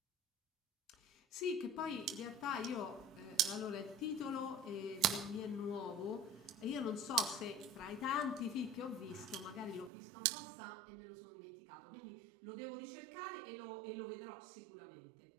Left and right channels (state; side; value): drops out; left; at 9.9 s